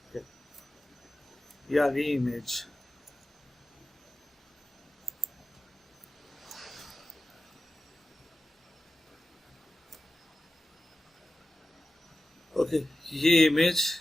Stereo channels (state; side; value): normal; both; correlation 0.94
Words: Okay. ये आ गई इमेज। ओके, ये इमेज